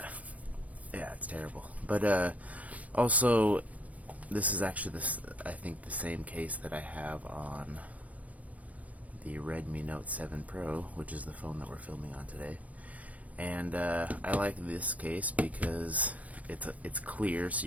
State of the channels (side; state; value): left; late; 0.068 ms